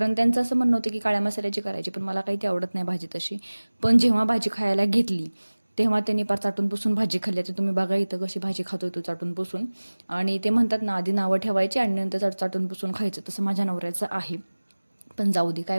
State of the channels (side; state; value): both; inverted; correlation -1.00